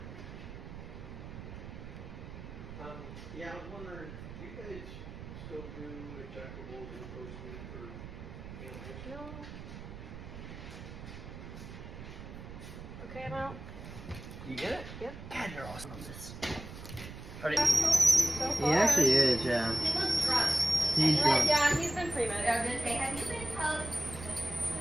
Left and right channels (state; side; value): noise; right; rumble, 12 dB below the sound